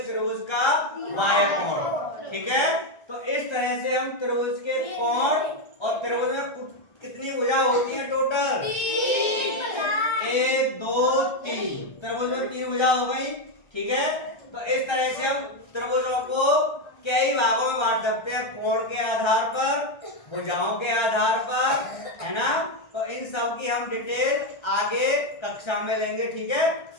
त्रिभुज का बाह्य कोण। ठीक है, तो इस तरह से हम त्रिभुज के कोण और त्रिभुज में कितनी भुजा होती है टोटल? 1 2 3। त्रिभुज में 3 भुजा हो गई। ठीक है, तो इस तरह से हम त्रिभुजों को कई भागों में बांट सकते हैं, कोण के आधार पर, भुजाओं के आधार पर, है ना। तो इन सब की हम डिटेल आगे कक्षा में लेंगे। ठीक है,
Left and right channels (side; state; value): right; late; 1.3 ms